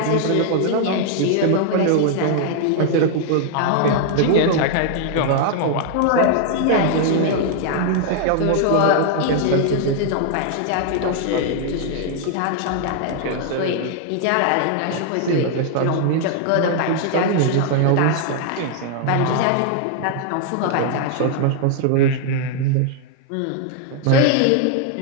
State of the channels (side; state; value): both; different; correlation 0.00